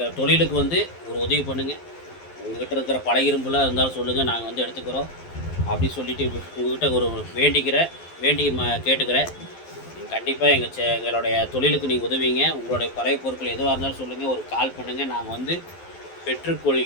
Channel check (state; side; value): late; right; 12 ms